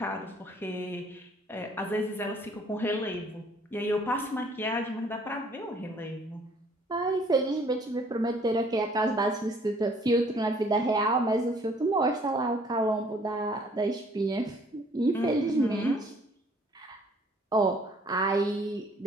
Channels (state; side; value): normal; both; correlation 0.59